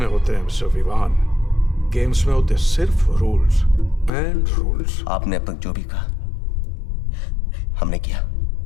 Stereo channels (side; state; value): right; drops out; at 4.1 s